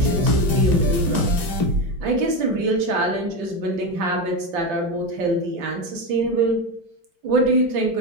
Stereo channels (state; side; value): late; left; 4.4 ms